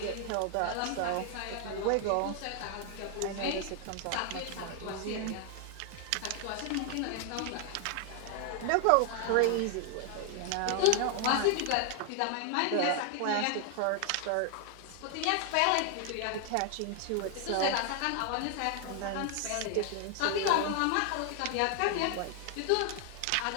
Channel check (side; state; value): both; different; correlation 0.00